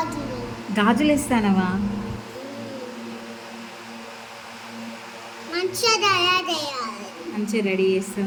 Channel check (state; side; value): identical; both; correlation 1.00